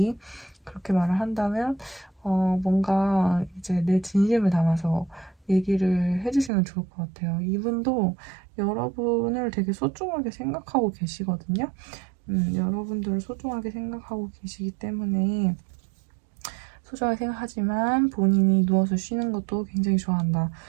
그렇게 말을 한다면, 뭔가 이제 내 진심을 담아서 얘기를 해주시면 좋을 것 같아요. 이분도 여러분을 되게 소중하게 생각하고 계시거든요. 여러분들을 소중하게 생각하고 계시기 때문에 소중하게 생각하지만 본인이 누워서 쉬는 것도 굉장히 좋아한다.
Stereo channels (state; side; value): drops out; left; at 6.5 s